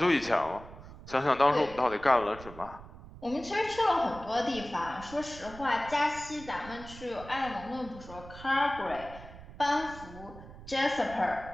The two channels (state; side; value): noise; right; rumble, 16 dB below the sound